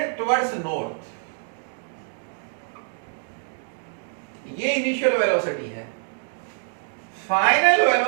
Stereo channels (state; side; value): silent; left; digital silence